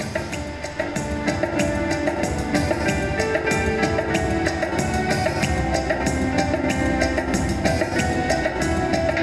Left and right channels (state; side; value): identical; both; correlation 1.00